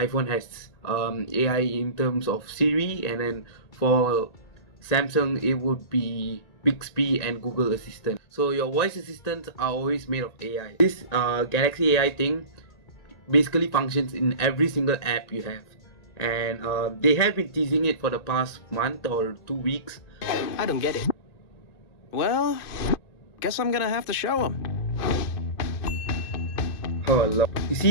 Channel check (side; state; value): right; late; 1.9 ms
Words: has AI in terms of Siri, and then for Samsung it would be Bixby and Google Assistant. So your voice assistants are always made of AI. This Galaxy AI thing basically functions in every single app you have, and they have been teasing it for the past month or 2 weeks. I don't get it. Well, guess I'm gonna have to show them. Oh Lord. You